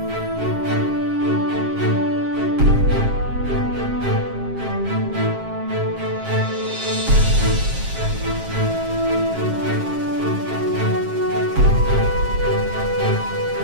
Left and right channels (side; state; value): left; late; 7.5 ms